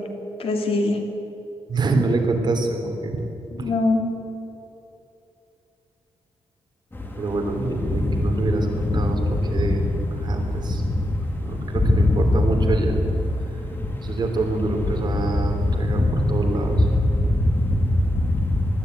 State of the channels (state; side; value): normal; both; correlation 0.84